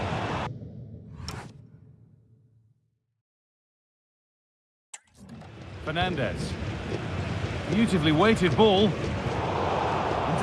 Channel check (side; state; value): both; identical; correlation 1.00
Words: Fernandez. Beautifully weighted ball.